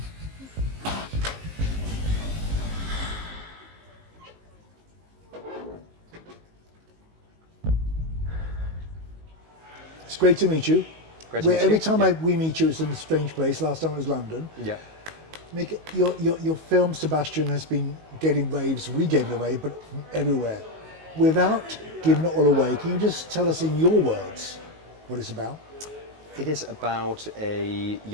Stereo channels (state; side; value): late; left; 19 ms